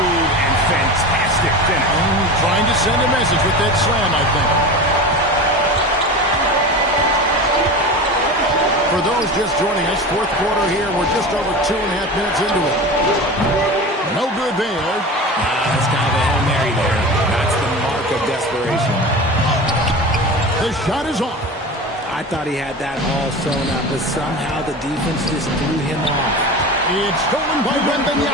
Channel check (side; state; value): both; normal; correlation 0.30